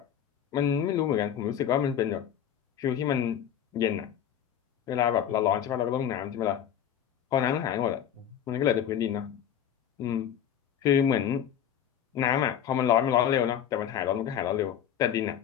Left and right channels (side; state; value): right; quieter; 9.5 dB